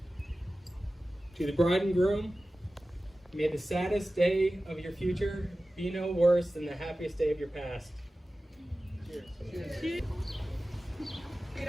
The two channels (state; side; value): normal; both; correlation 0.95